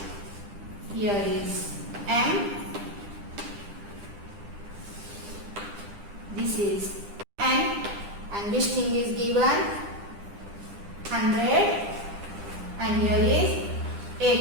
Here is M. This is N. And this thing is given 100 and here is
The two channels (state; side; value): late; left; 10 ms